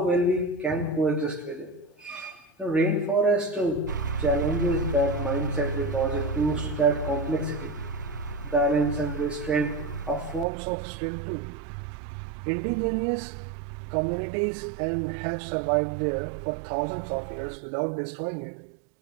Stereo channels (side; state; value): left; drops out; at 10.5 s